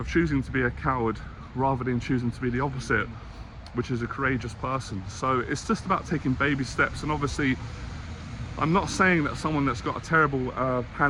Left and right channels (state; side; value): identical; both; correlation 1.00